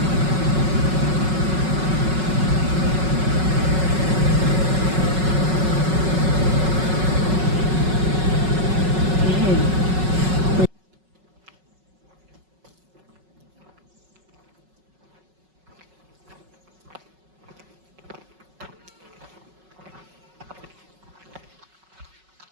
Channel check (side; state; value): left; late; 5.4 ms